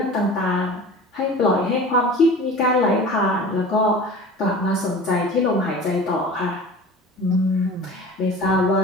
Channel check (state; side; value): normal; both; correlation 0.39